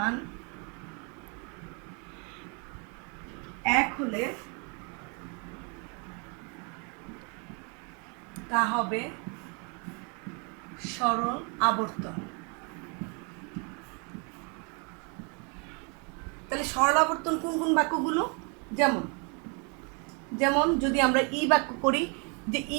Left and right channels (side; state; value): left; quieter; 34.6 dB